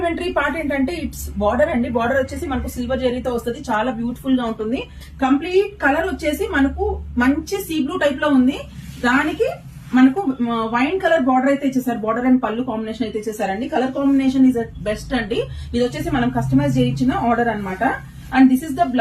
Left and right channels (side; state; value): both; identical; correlation 1.00